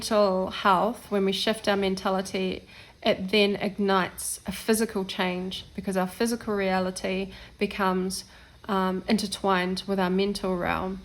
health. When we shift our mentality, it then ignites a physical change, because our physical reality becomes intertwined with our mental realm,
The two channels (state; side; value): identical; both; correlation 1.00